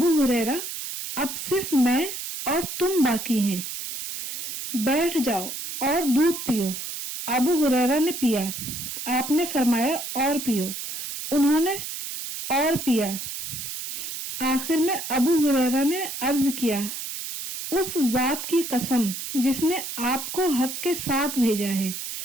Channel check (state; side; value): noise; right; hiss, 6 dB below the sound